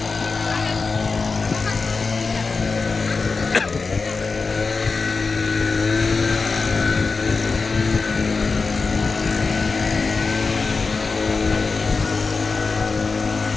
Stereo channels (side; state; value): right; quieter; 4.4 dB